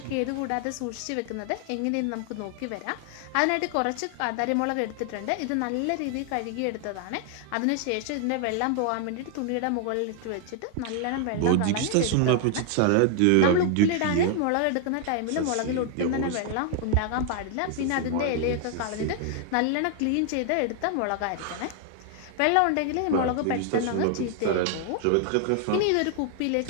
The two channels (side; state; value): both; different; correlation 0.00